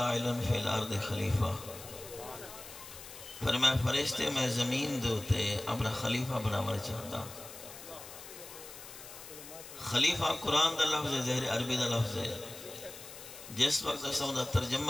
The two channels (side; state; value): left; noise; hiss, 14 dB below the sound